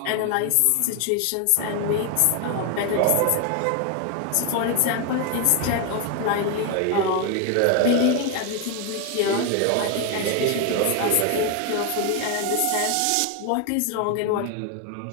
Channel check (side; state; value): both; different; correlation 0.01